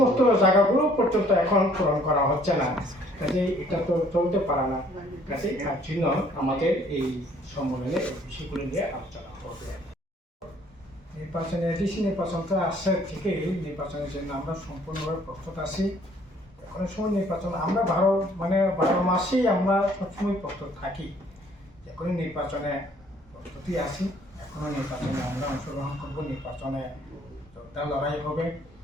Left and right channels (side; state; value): both; normal; correlation 0.60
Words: জায়গাগুলো পর্যন্ত এখন পূরণ করা হচ্ছে না। কাজে এটা তো চলতে পারে না। কাজে তার জন্য আমাদের এই সম্মেলনে এই বিষয়গুলো নিয়ে আলোচনা হবে। নির্বাচনে এডিসি নির্বাচনটা আসছে থেকেই নির্বাচনের জন্য আমরা সম্পূর্ণভাবে প্রস্তুত আছি। এখন সময় নির্বাচন আমরা 12 মাসেই আমরা সবসময় প্রস্তুত থাকি। এখন নির্বাচনে প্রস্তুতি আছি, এখনো নির্বাচনে আমরা অংশগ্রহণ করব, নির্বাচনে যোদ্ধা লড়াই হবে,